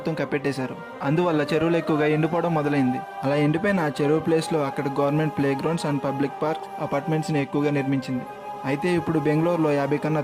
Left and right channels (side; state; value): both; identical; correlation 1.00